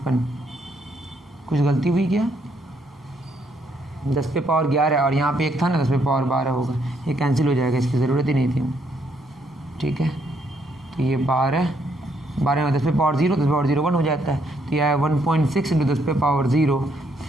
कुछ गलती हुई क्या, 10 पे पावर 11 और यहाँ पे 1 था ना, 10 पे पावर 12 होगा, ये कैंसिल हो जाएगा, इसकी ज़रूरत ही नहीं थी। ठीक है, तो ये 12 में 10 पे पावर 0, 10 पे पावर 0 1 हो जाता है, तो यह है 1.6 इंटू 10 पे पावर 0,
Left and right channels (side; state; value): both; normal; correlation 0.72